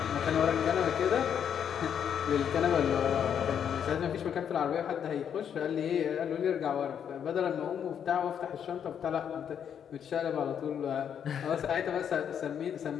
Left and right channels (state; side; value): quieter; right; 8.4 dB